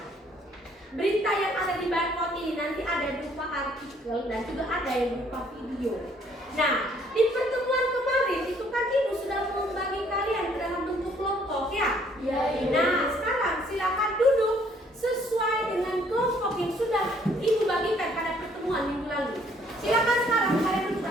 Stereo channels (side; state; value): both; normal; correlation 0.63